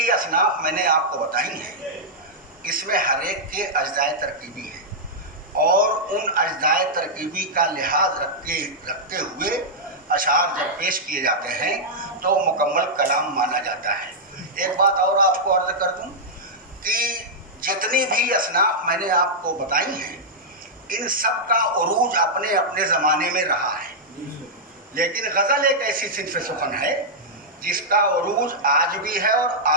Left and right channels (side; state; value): both; normal; correlation -0.08